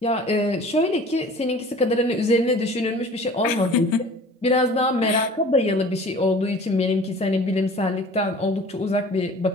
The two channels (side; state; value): both; normal; correlation 0.45